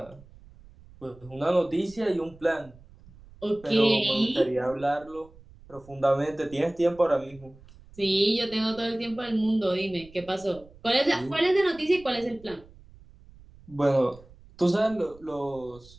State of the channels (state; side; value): noise; right; rumble, 23 dB below the sound